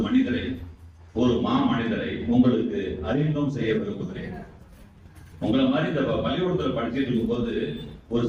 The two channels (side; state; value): both; identical; correlation 1.00